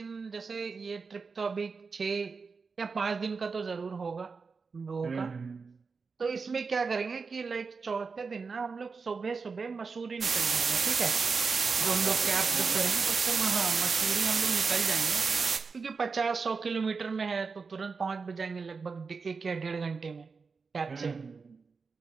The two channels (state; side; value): quieter; left; 4.8 dB